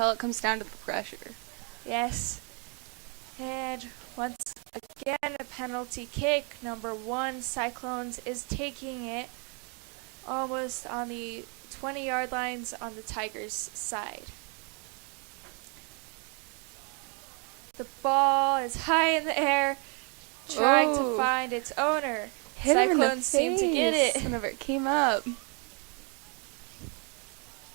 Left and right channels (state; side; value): quieter; left; 35.4 dB